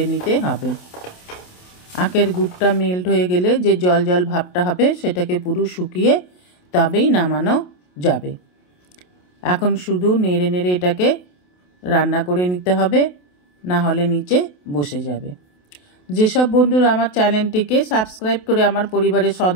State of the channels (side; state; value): right; late; 28 ms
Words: নিতে হবে। আখের গুড়টা মেল্ট হয়ে গেলে যে জল জল ভাবটা হবে সেটাকে পুরো শুকিয়ে তবেই নামানো যাবে। এখন শুধু নেড়ে নেড়ে এটাকে রান্না করে নিতে হবে, না হলে নিচে বসে যাবে। যেসব বন্ধুরা আমার চ্যানেলটিকে সাবস্ক্রাইব করে আমার পরিবারের